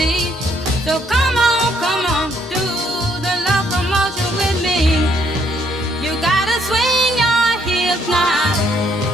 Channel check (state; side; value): normal; both; correlation 0.70